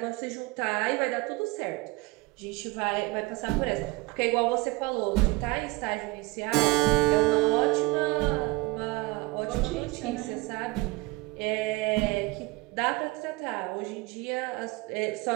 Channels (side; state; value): left; quieter; 22.3 dB